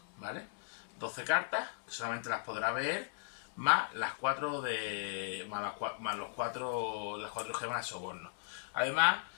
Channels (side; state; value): right; silent; digital silence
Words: ¿vale? 12 cartas, que solamente las podrá ver, más las 4 las 4 gemas de soborno. Además,